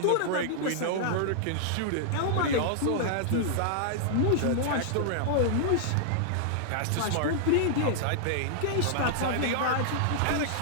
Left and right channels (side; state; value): both; different; correlation -0.01